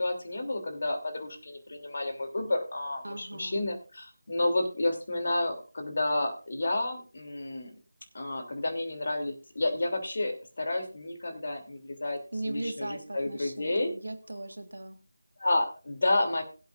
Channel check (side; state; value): both; inverted; correlation -0.96